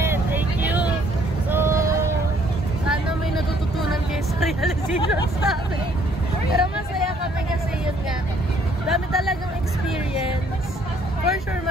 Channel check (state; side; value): normal; both; correlation 0.64